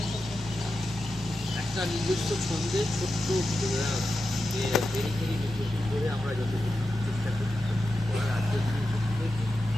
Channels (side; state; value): both; normal; correlation 0.91